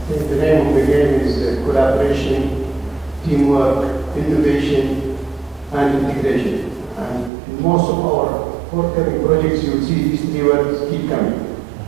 I think the name of the game is collaboration, teamwork, innovation, and integration. And in most of our forthcoming projects, you will see these 3 words keep coming.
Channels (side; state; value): left; drops out; at 7.3 s